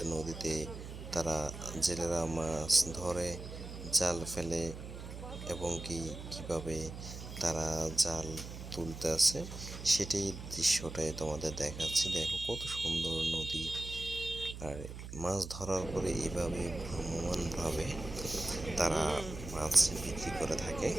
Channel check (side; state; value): right; noise; hum, 10 dB below the sound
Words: নদীতে তারা জেলেরা মাছ ধরে, জাল ফেলে এবং কিভাবে তারা জাল তুলতে আছে সেটাই দৃশ্যটাই তোমাদের দেখাচ্ছি। দেখো কত সুন্দর নদী, আর মাছ ধরার পরে এইভাবে ভ্রাম্যমাণভাবে তারা মাছ বিক্রি করে থাকে।